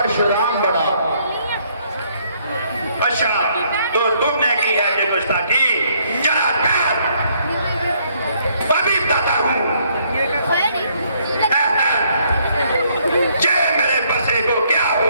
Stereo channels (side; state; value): both; inverted; correlation -0.68